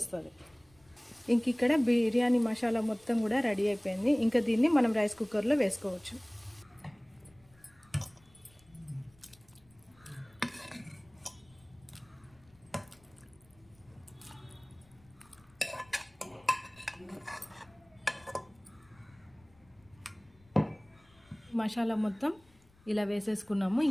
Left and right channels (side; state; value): left; noise; rumble, 30 dB below the sound